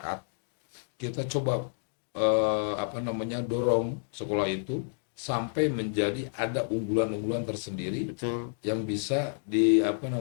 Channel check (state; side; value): silent; right; digital silence